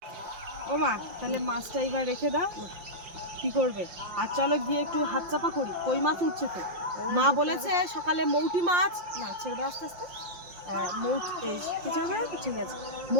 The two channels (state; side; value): late; left; 5.7 ms